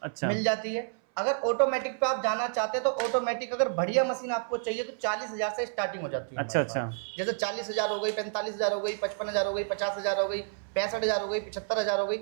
मिल जाती है। अगर ऑटोमेटिक पे आप जाना चाहते हैं तो ऑटोमेटिक अगर बढ़िया मशीन आपको चाहिए तो 40,000 से स्टार्टिंग हो जाती है। अच्छा अच्छा। जैसे 40,000 हो गई, 45,000 हो गई, 55,000 हो गई, 50,000 हो गई, 65,000 हो गई, 75,000 हो गई,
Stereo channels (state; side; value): silent; left; 58 dB below the other